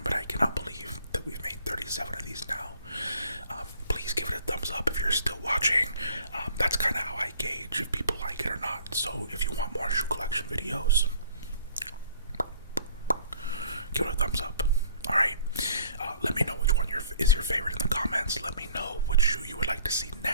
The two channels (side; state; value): both; inverted; correlation -0.54